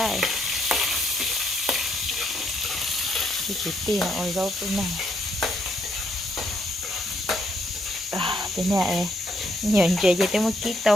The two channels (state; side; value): normal; both; correlation 0.74